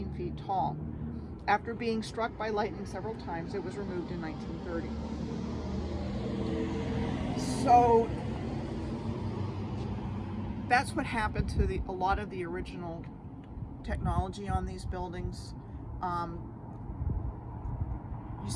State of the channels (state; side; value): identical; both; correlation 1.00